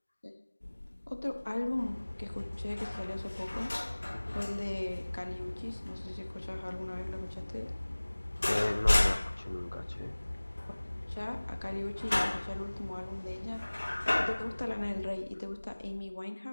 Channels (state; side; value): inverted; both; correlation -1.00